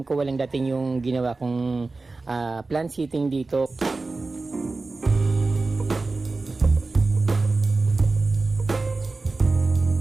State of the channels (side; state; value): left; quieter; 3.6 dB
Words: ko walang dating yung ginawa kong plant seating dito.